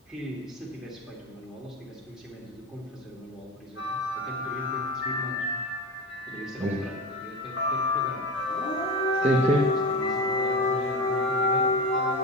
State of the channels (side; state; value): both; normal; correlation 0.25